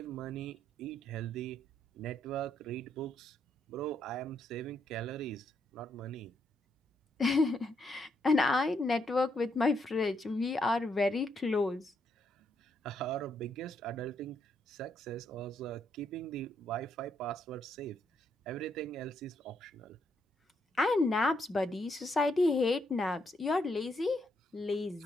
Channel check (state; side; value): normal; both; correlation 0.76